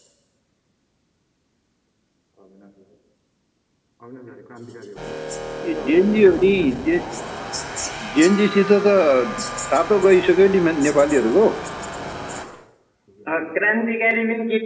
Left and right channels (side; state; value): both; identical; correlation 1.00